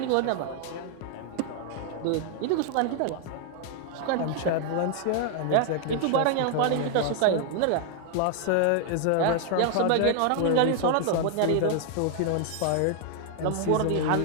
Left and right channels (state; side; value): different; both; correlation 0.00